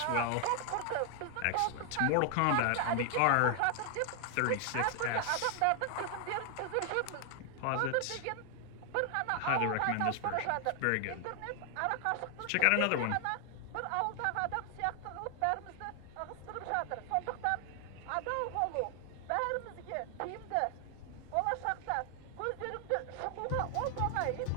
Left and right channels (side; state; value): both; different; correlation 0.00